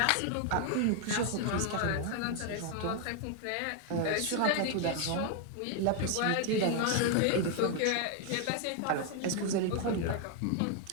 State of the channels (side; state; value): both; different; correlation 0.01